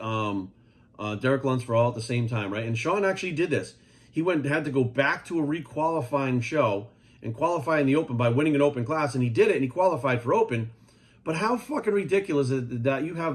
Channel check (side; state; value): both; identical; correlation 1.00